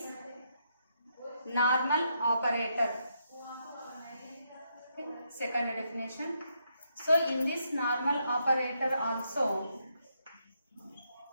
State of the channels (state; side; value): inverted; both; correlation -0.78